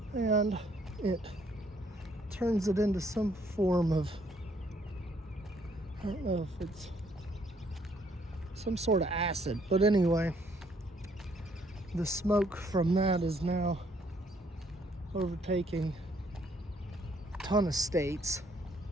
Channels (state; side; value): normal; both; correlation 0.66